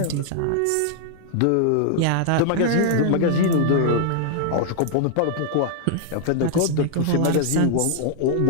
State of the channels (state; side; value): different; both; correlation -0.01